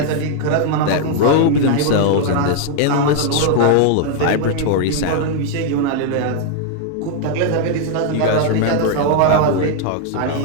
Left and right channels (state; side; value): different; both; correlation 0.00